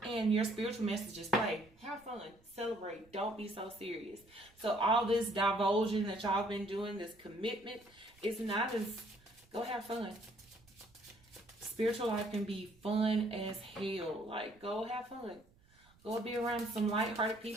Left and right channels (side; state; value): right; noise; rumble, 29 dB below the sound